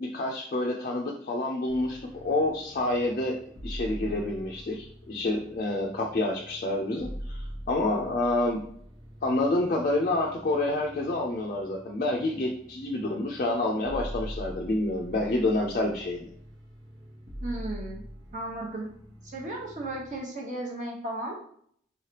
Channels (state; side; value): normal; both; correlation 0.42